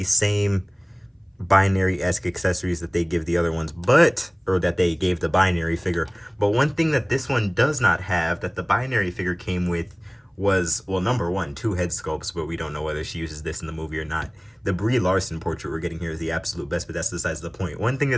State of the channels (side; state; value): both; identical; correlation 1.00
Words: same binary-esque accessories that they give the other ones, or that they gave the binary figure. But one thing that this one does not have that the binary figure came with was, well, number one, two head sculpts, but we don't know whether she uses this in the movie or not. The Brie Larson portrait we're getting here is the absolute best, but that's besides the point. One thing